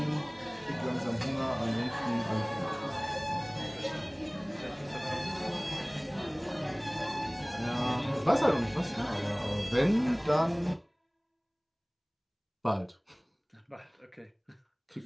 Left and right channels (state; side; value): identical; both; correlation 1.00